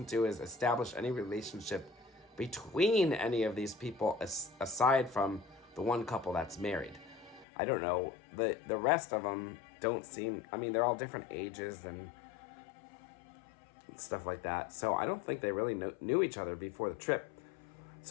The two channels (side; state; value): right; drops out; at 7.5 s